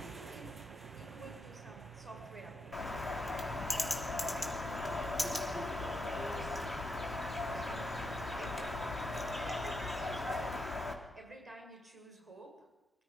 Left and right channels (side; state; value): both; normal; correlation 0.82